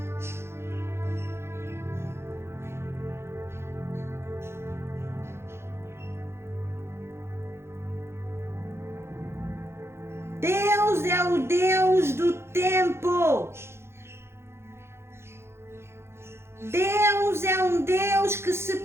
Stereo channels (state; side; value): late; left; 0.12 ms